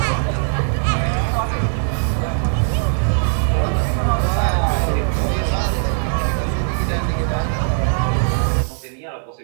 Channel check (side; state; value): left; silent; 66 dB below the other